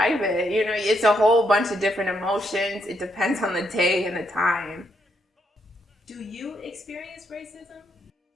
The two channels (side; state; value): both; normal; correlation 0.76